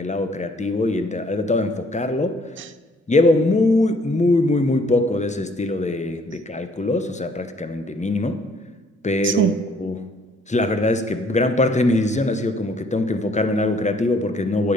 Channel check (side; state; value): both; normal; correlation 0.62